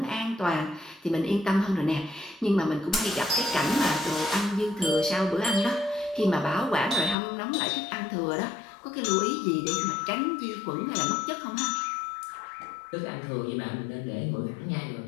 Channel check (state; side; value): drops out; right; at 7.2 s